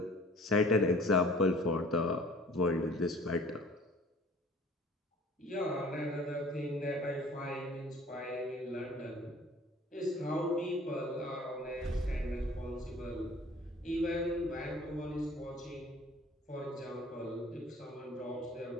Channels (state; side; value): normal; both; correlation 0.50